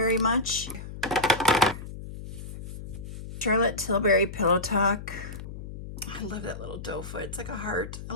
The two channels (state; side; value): noise; left; hum, 10 dB below the sound